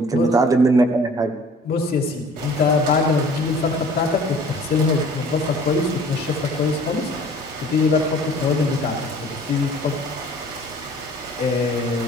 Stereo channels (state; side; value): normal; both; correlation 0.50